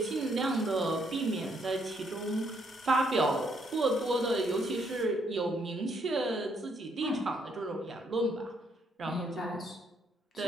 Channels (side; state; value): both; normal; correlation 0.72